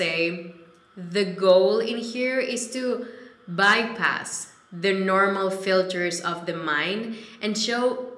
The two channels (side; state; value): both; identical; correlation 1.00